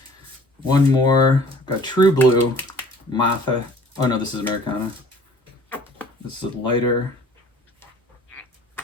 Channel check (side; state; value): both; normal; correlation 0.51